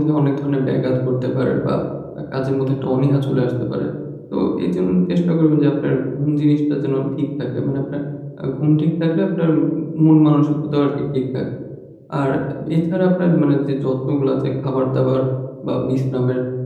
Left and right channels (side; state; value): both; identical; correlation 1.00